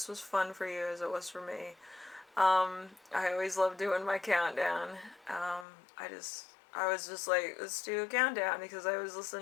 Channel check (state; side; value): drops out; right; at 5.7 s